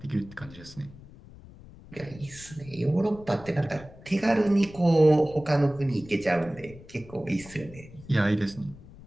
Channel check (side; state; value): left; noise; rumble, 19 dB below the sound